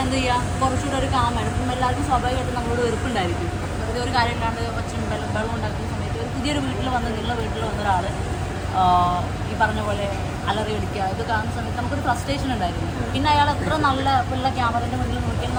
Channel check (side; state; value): both; identical; correlation 1.00